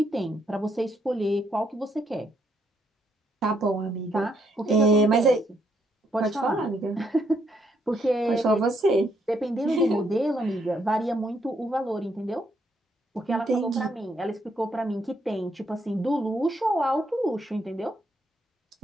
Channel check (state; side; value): normal; both; correlation 0.74